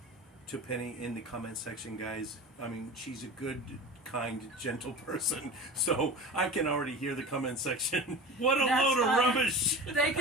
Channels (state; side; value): normal; both; correlation 0.33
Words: to Penny in the comment section, guys. I mean, she's a good, kind, gentle person. So I can already hear the comment section. What a load of rubbish! They